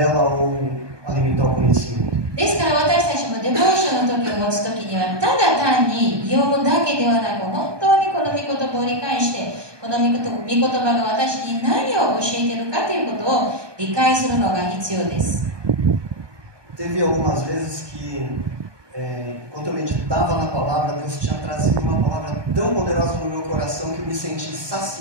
ou alimentar o conhecimento. ですから私たちもデボーションの時を持つ時には、ただ単に読むだけではなく、本当にこの御言葉を理解して、この御言葉が私に何を教えているかということを理解するのが必要です。 Teve algumas vezes que, quando eu meditava na palavra, Deus tinha trazido uma palavra tão poderosa no meu coração que eu me senti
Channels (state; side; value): late; left; 1.2 ms